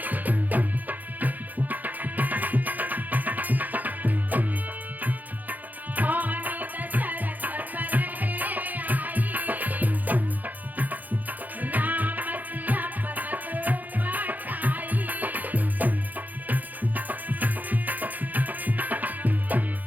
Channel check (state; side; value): late; left; 0.082 ms